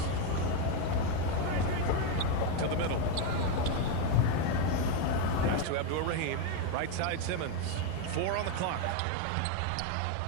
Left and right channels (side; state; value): both; different; correlation 0.02